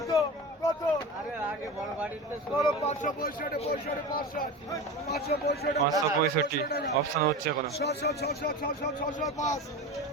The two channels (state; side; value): normal; both; correlation 0.27